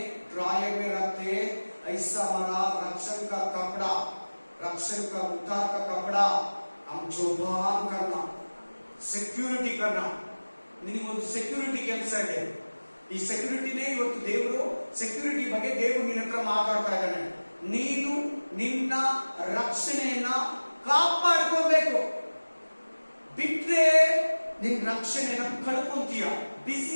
ड्रायर में रखते। ऐसा हमारा रक्षण का कपड़ा, रक्षण का उद्धार का कपड़ा हम जोपान करना, ಸೆಕ್ಯೂರಿಟಿ करना. ನಿನಗೊಂದು ಸೆಕ್ಯೂರಿಟಿ ಕೆಲಸ ಇದೆ. ಈ ಸೆಕ್ಯೂರಿಟಿನೇ ಇವತ್ತು ದೇವರು, ಸೆಕ್ಯೂರಿಟಿ ಬಗ್ಗೆ ದೇವರು ನಿನ್ನ ಹತ್ರ ಮಾತಾಡ್ತಾ ಇದ್ದಾನೆ. ನೀನು ನಿನ್ನ ರಕ್ಷಣೆಯನ್ನ ಕಾಪಾಡ್ಕೋಬೇಕು. ಬಿಟ್ರೆ ನಿನ್ ರಕ್ಷಣೆಯನ್ನ ಕಳ್ಕೊಂತೀಯ.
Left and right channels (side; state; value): both; inverted; correlation -1.00